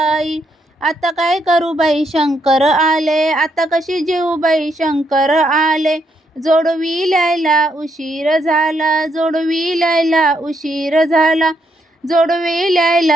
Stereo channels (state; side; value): normal; both; correlation 0.76